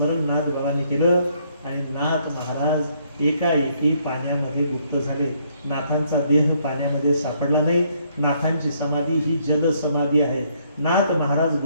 नाथ बाबांनी केलं. आणि नाथ महाराज एकाएकी पाण्यामध्ये लुप्त झाले. नाथांचा देह पाण्यामध्ये सापडला नाही. नाथांची समाधी ही जल समाधी आहे. नाथ महाराज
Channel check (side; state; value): both; inverted; correlation -0.69